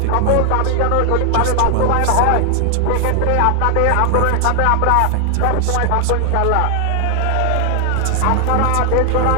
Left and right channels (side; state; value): both; different; correlation 0.00